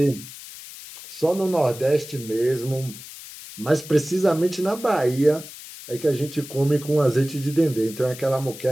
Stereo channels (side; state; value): left; noise; hiss, 14 dB below the sound